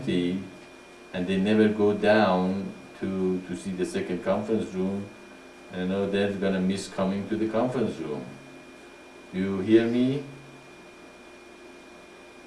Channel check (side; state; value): both; identical; correlation 1.00